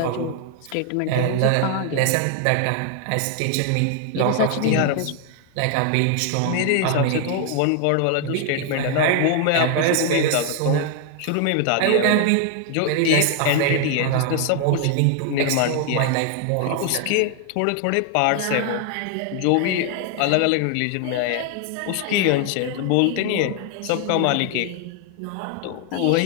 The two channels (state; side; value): different; both; correlation 0.00